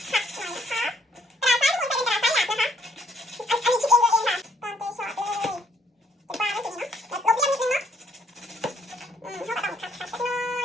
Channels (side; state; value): both; normal; correlation 0.67